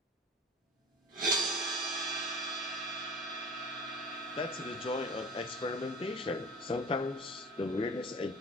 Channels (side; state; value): both; normal; correlation 0.38